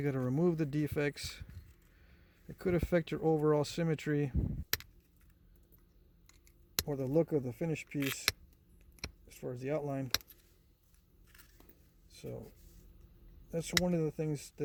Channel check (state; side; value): identical; both; correlation 1.00